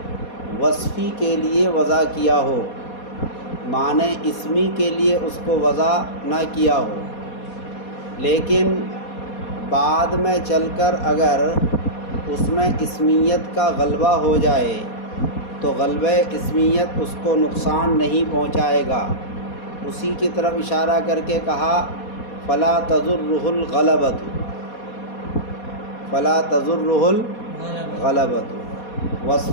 وصفی کے لیے وضع کیا ہو، معنی اسمی کے لیے اس کو وضع نہ کیا ہو۔ لیکن بعد میں چل کر اگر اس میں اسمیت کا غلبہ ہو جائے تو غلبہ اسمیت اس کو نقصان نہیں پہنچائے گا۔ اسی کی طرف اشارہ کر کے کہا فلا تضرہ الغلبۃ، فلا تضرہ الغلبۃ۔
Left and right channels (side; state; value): right; late; 4.2 ms